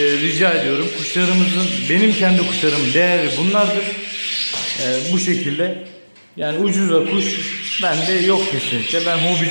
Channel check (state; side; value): inverted; both; correlation -1.00